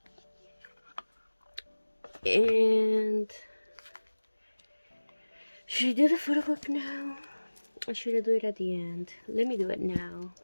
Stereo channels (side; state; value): both; inverted; correlation -1.00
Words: And should I do the photo book now, or should I do it at the end? Let me do it now.